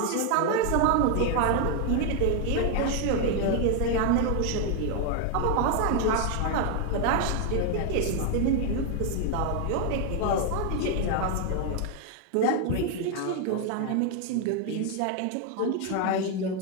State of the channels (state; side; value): different; both; correlation 0.01